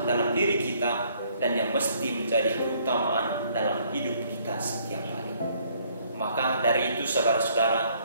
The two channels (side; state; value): both; inverted; correlation -0.65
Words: dalam diri kita dan yang mesti menjadi keutamaan dalam hidup kita setiap hari. Maka dari itu